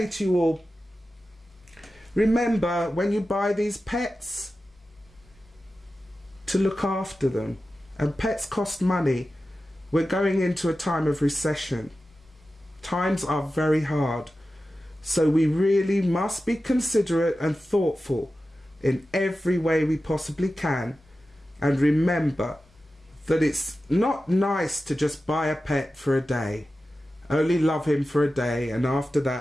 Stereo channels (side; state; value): both; normal; correlation 0.94